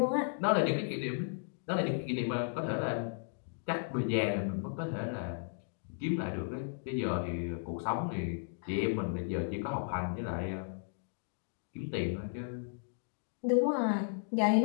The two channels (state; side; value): silent; right; digital silence